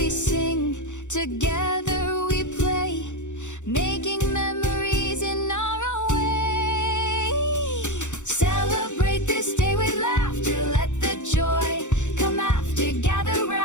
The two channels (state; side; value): late; right; 0.85 ms